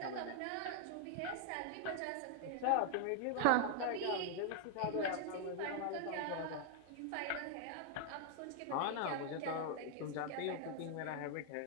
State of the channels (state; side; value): different; both; correlation 0.00